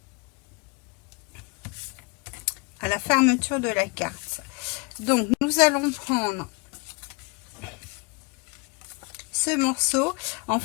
à la fermeture de la carte. Donc, nous allons prendre ce morceau. En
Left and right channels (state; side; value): quieter; right; 29.7 dB